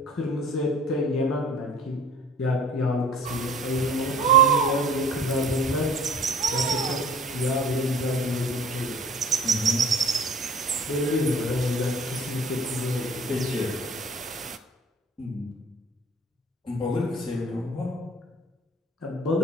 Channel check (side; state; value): both; normal; correlation 0.48